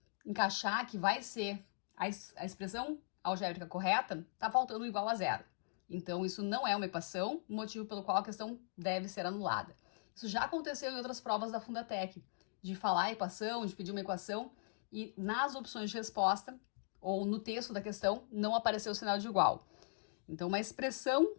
encaixar, que vai ser a expressão algébrica correta, tá faltando igual a zero. Então, isso não é uma equação, motivo pelo qual a questão deve ser anulada. Isso já aconteceu em outras provas da Fundatec, de falar a equação, de pedir uma equação, e nas opções de resposta, ou no texto da questão, não apareceu o sinal de igual. Então, uma expressão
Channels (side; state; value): right; silent; digital silence